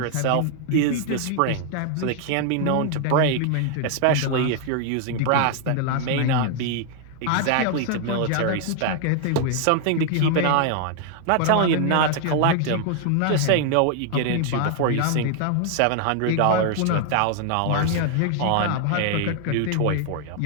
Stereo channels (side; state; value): both; different; correlation 0.00